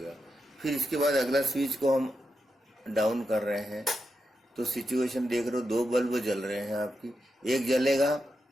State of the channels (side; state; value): both; normal; correlation 0.87